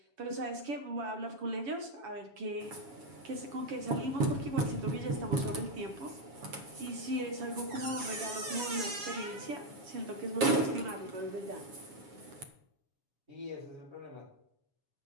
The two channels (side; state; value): left; late; 7.2 ms